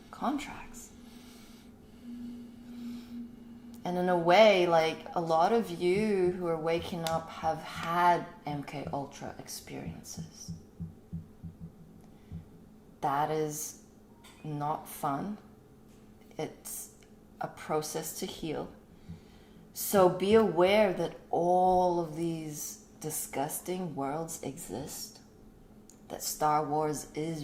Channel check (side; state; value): both; identical; correlation 1.00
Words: contracts. And in a way, like, a lot of you who are waking up have had MK Ultra experiences. that is not fun. It's a process to heal. So be aware that all of these disgusting worlds exist. That Star Wars